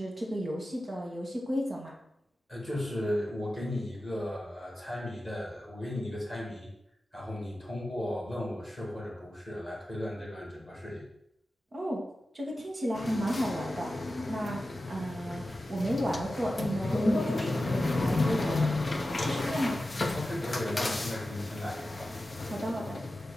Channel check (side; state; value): both; normal; correlation 0.93